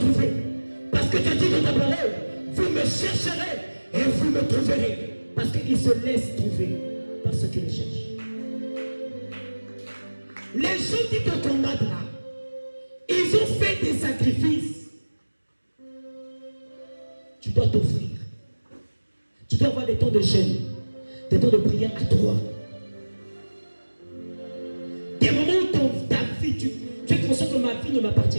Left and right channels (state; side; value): inverted; both; correlation -1.00